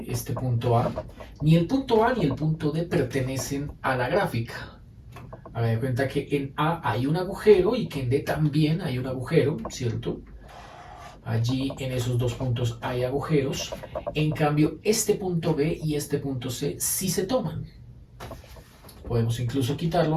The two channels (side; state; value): both; identical; correlation 1.00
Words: punto A, ni el punto A ni el punto D pertenecen a la gráfica. Hagan de cuenta que en A hay un agujero y que en D también hay un agujero, ¿cierto? Allí en esos dos puntos hay agujeros. En cambio, este punto B y este punto C sí se toman. Podemos incluso